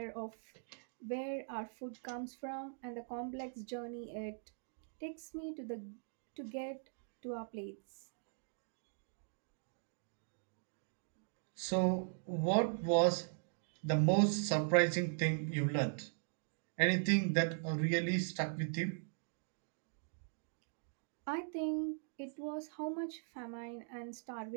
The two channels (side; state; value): left; silent; digital silence